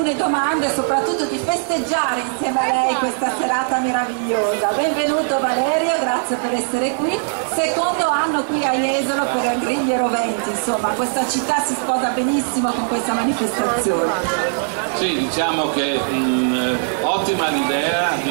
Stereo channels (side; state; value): left; silent; digital silence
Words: domande e soprattutto di festeggiare insieme a lei questa serata meravigliosa. Benvenuto Valerio, grazie per essere qui. Secondo anno qui a Jesolo per Griglie Roventi, insomma questa città si sposa benissimo con questa manifestazione. Sì, diciamo che ottima l'idea